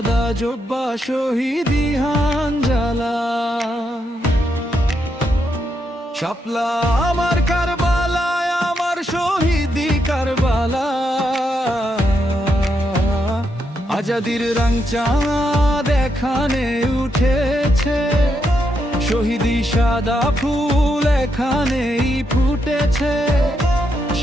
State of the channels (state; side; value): normal; both; correlation 0.81